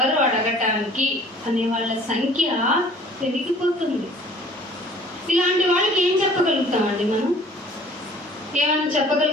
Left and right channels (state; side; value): normal; both; correlation 0.52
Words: అడగటానికి అనే వాళ్ళ సంఖ్య పెరిగిపోతుంది. ఇలాంటి వాళ్ళకి ఏం చెప్పగలుగుతామండి మనం? ఏమైనా